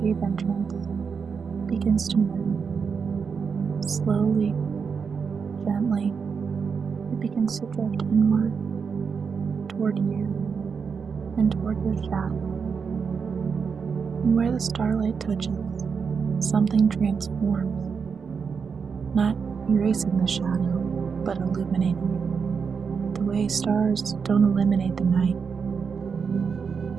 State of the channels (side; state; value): left; quieter; 5.9 dB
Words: entrance begins to move. Slowly, gently, it begins to drift inward, toward you, and toward your shadow. And where the starlight touches, something transforms, not erasing the shadow, but illuminating it. The way stars don't eliminate the night,